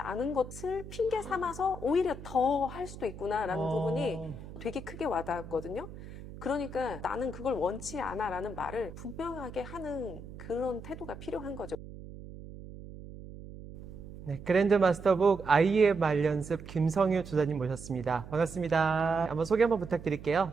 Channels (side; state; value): right; noise; hum, 14 dB below the sound